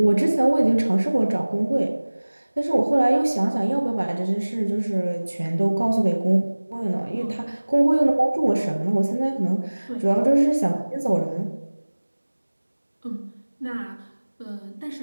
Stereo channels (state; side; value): inverted; both; correlation -1.00